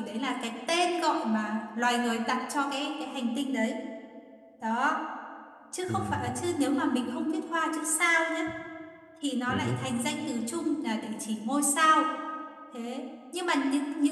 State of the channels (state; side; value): identical; both; correlation 1.00